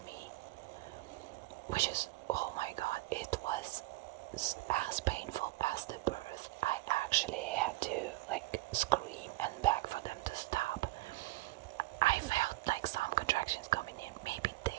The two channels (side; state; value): left; quieter; 20.2 dB